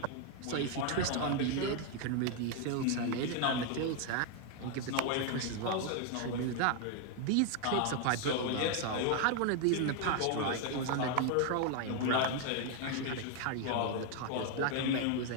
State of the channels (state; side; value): different; both; correlation 0.00